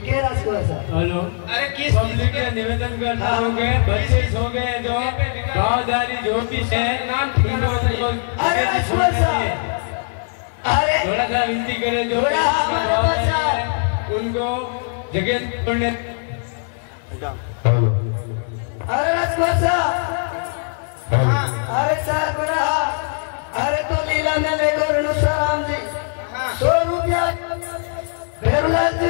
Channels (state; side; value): silent; right; 65 dB below the other